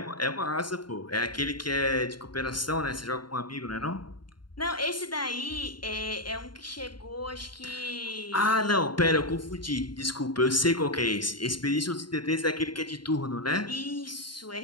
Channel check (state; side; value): late; right; 0.72 ms